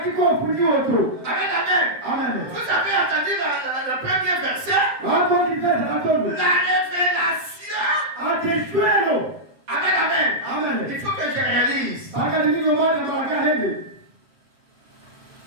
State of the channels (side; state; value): left; late; 7.5 ms